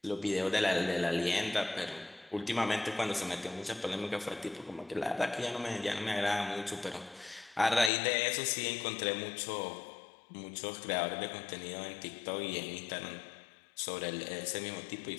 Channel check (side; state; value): right; drops out; at 7.9 s